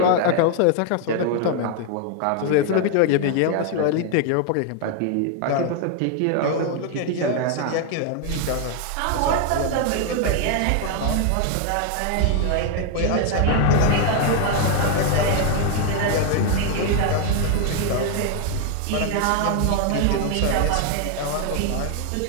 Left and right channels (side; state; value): both; different; correlation 0.00